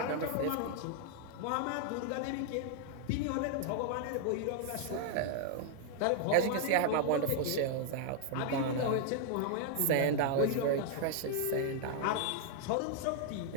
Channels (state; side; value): different; both; correlation 0.00